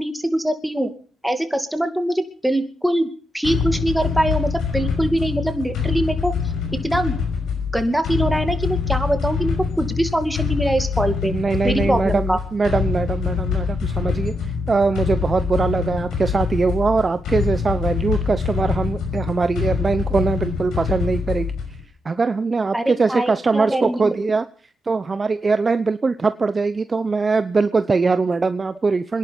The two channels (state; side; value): normal; both; correlation 0.84